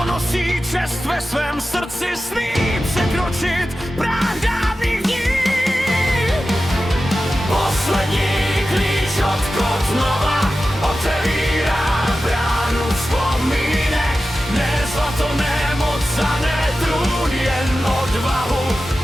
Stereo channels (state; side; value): normal; both; correlation 0.93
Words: nosí čest ve svém srdci, smí překročit práh dávných dní. Poslední klíč od Kotnova otevírá bránu vzpomínek. Ne zlato, ne moc a ne trůn, jen odvahu